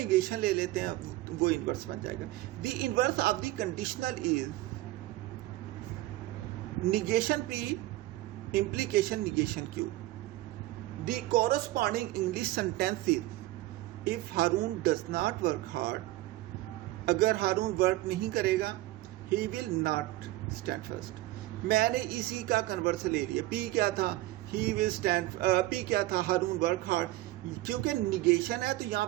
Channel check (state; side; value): quieter; left; 17.7 dB